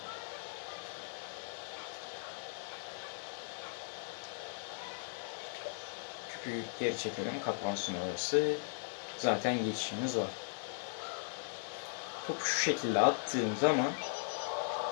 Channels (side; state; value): right; silent; digital silence